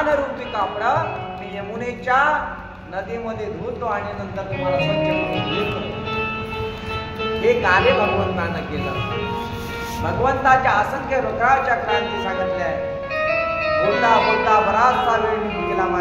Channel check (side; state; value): both; identical; correlation 1.00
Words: रूपी कापड मी यमुनेच्या नदीमध्ये धुतो आणि नंतर तुम्हाला स्वच्छ करून देतो. हे कार्य भगवंतानं केलं. भगवंताच्या असंख्य रुद्राच्या क्रांती सांगितल्या आहे. बोलता बोलता बराचसा वेळ निघून गेला